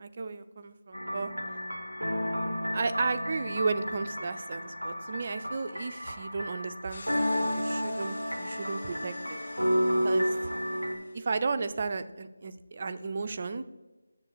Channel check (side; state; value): both; inverted; correlation -0.95